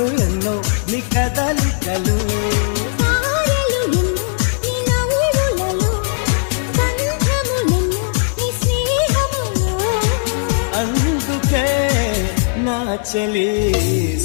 ఎన్నో నీ కదలికలు తారలు ఎన్నో నీ నవ్వులలో బంధములెన్నో నీ స్నేహములో అందుకే నా చెలి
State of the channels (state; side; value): silent; right; 68 dB below the other